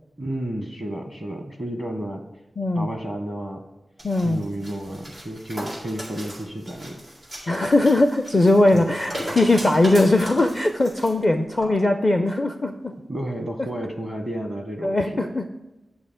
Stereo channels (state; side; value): normal; both; correlation 0.92